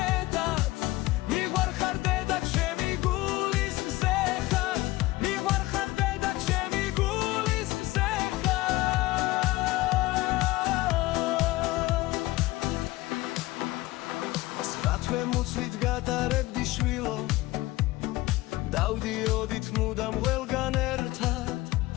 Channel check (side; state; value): right; quieter; 19.0 dB